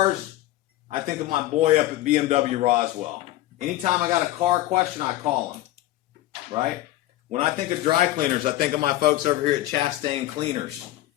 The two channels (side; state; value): right; quieter; 15.5 dB